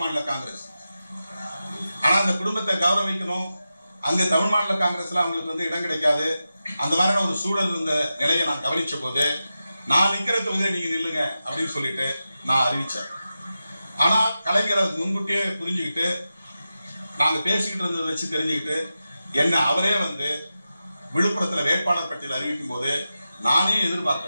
மாநில காங்கிரஸ். ஆனா அந்த குடும்பத்தை கௌரவிக்கணும். அங்க தமிழ் மாநில காங்கிரஸ்ல அவங்களுக்கு இடம் கிடைக்காது. அந்த மாதிரியான ஒரு சூழல் இருந்த நிலையை நான் கவனிச்ச போது, நான் நிக்கிற தொகுதியை நீங்க நில்லுங்க அப்படின்னு சொல்லிட்டு நான் அறிவிச்சேன். ஆனா கலைஞர் அது முன்கூட்டியே புரிஞ்சுக்கிட்டு, நாங்க பேசிக்கிட்டு இருந்ததை வச்சு தெரிஞ்சுக்கிட்டு, என்ன அவரே விழுப்புரத்துல வேட்பாளர் பட்டியல் அறிவிக்கும் போது நானே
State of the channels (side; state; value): both; inverted; correlation -0.92